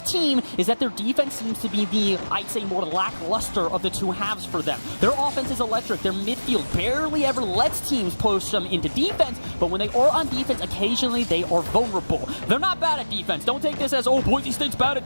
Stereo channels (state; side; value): inverted; both; correlation -1.00